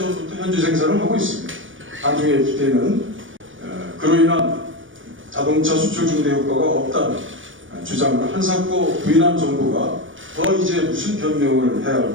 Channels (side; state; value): left; late; 0.57 ms